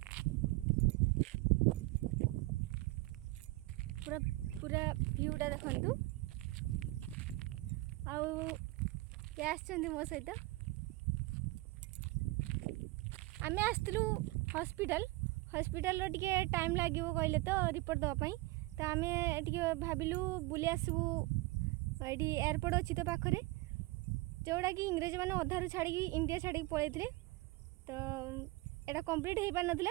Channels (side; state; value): left; quieter; 20.7 dB